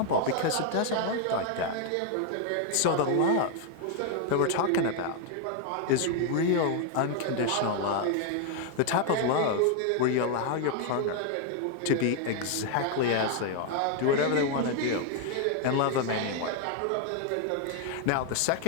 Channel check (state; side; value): different; both; correlation 0.00